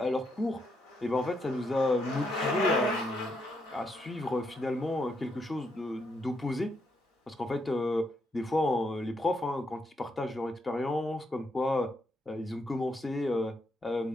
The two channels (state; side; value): normal; both; correlation 0.78